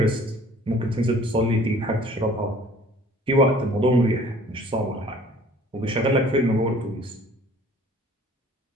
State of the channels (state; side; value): normal; both; correlation 0.52